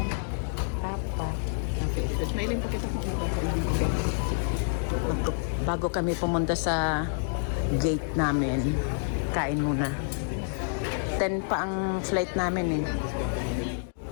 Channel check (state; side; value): silent; right; digital silence